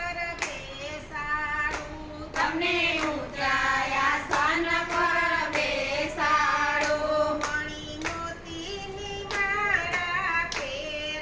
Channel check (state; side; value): identical; both; correlation 1.00